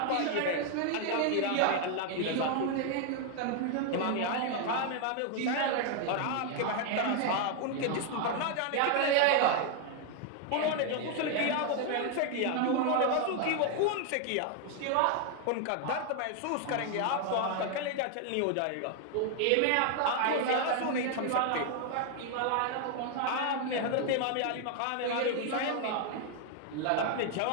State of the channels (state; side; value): different; both; correlation 0.00